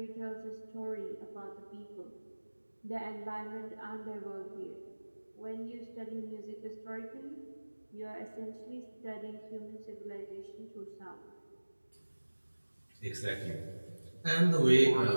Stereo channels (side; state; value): both; inverted; correlation -1.00